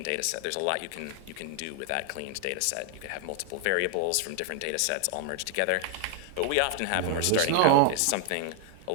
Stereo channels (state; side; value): different; both; correlation -0.01